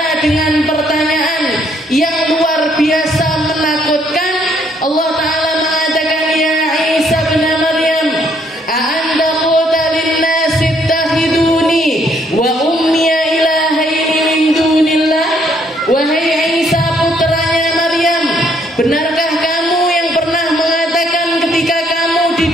dengan pertanyaan yang luar biasa menakutkan. Allah Ta'ala mengatakan, ya Isa bin Maryam, a'anta qulta linnasi ittakhiduni wa ummiya ilahaini min dunillah. Wahai Isa putranya Maryam, benarkah kamu yang pernah mengatakan ketika kamu di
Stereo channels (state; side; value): normal; both; correlation 0.68